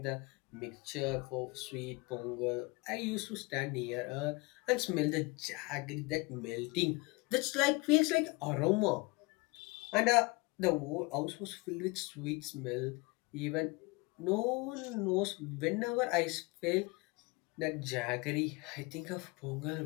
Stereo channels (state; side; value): quieter; right; 26.0 dB